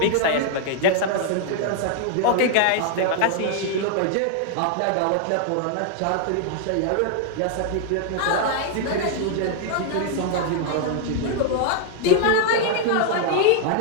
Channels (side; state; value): both; different; correlation 0.00